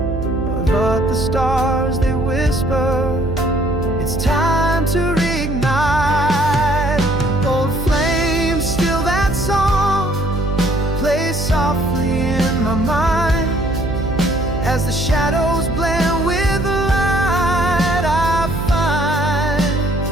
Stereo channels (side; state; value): right; noise; hum, 4 dB below the sound